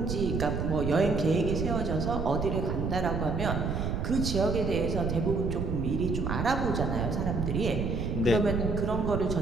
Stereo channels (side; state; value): right; noise; rumble, 1 dB below the sound